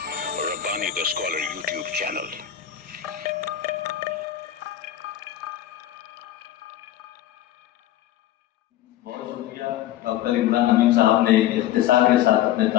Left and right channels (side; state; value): right; quieter; 12.1 dB